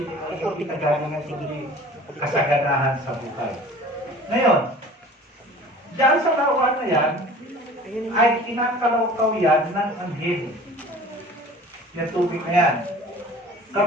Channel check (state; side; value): normal; both; correlation 0.45